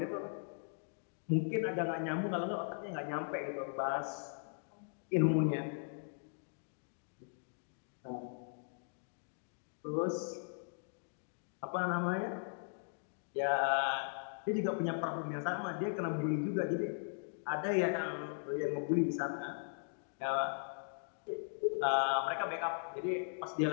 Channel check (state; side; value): silent; right; digital silence